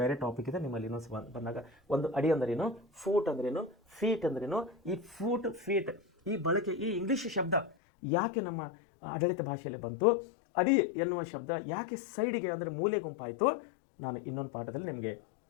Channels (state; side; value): drops out; right; at 7.8 s